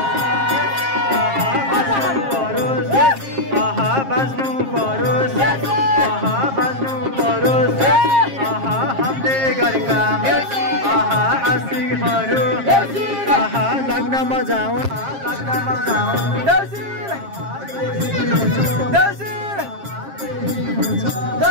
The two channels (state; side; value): late; left; 7.5 ms